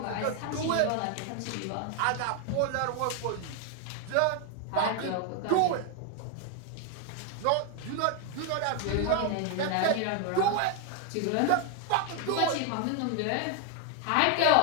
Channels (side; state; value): both; different; correlation 0.01